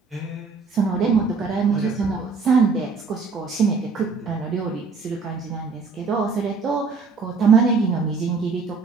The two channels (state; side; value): quieter; left; 4.6 dB